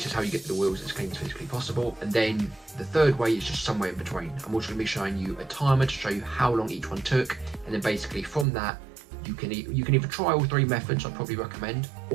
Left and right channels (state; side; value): drops out; left; at 8.5 s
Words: is how you get the wheels as clean as physically possible. And then the third way is just somewhere in between. I'm also going to be showing you a timer to show you how long each one took, and then basically from that you can either try all 3 methods, I'd probably recommend,